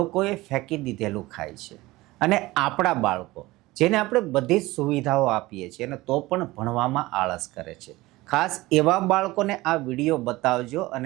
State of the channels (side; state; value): left; quieter; 19.5 dB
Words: ફેંકી દીધેલું ખાય છે. અને આપણા બાળકો જેને આપણે બધી જ સુવિધાઓ આપીએ છીએ અને તો પણ ભણવામાં આળસ કરે છે. ખાસ એવા બાળકોને આ વિડીયો બતાવજો